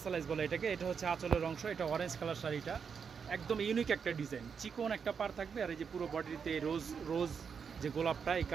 বলে এটাকে। এটা হচ্ছে আঁচলের অংশ, এটা অরেঞ্জ কালার শাড়িটা একদম ইউনিক একটা ডিজাইন, চিকন একটা পার থাকবে আর এই যে পুরো বডিতে রোজ রোজ যে গোলাপটা এই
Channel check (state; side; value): quieter; left; 6.4 dB